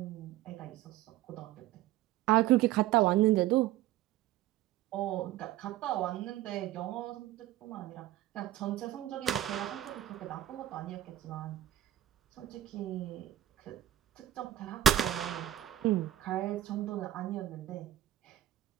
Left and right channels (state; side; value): quieter; left; 13.5 dB